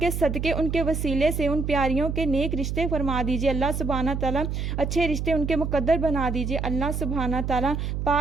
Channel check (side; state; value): right; noise; hum, 2 dB below the sound